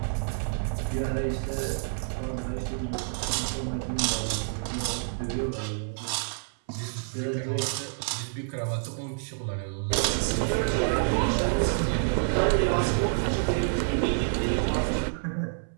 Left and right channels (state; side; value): silent; left; 59 dB below the other